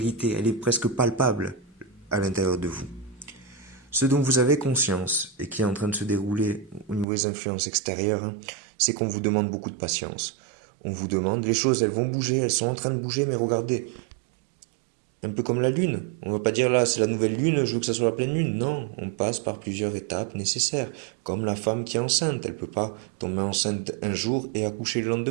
Elle est presque palpable à l'intérieur de vous. Ce dont vous avez conscience et qui est en train de se dérouler au niveau des influences extérieures, hein, c'est qu'on vous demande beaucoup de patience. On vous demande, les choses, elles vont bouger, elles sont en train de bouger, mais regardez, un peu comme la lune. On va pas dire là, c'est la nouvelle lune, je veux que ça soit la pleine lune. Non, on passe par plusieurs étapes nécessaires. Comme la femme qui est enceinte, elle peut pas tomber enceinte un jour et accoucher le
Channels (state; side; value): drops out; left; at 7.1 s